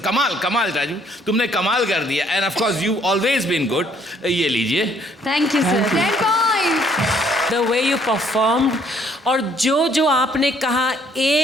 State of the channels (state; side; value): normal; both; correlation 0.64